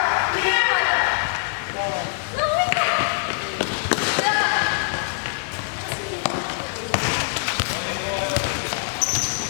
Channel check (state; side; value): silent; right; 63 dB below the other